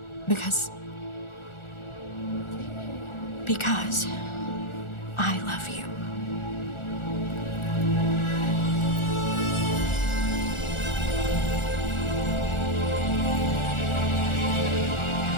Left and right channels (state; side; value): late; right; 1.4 ms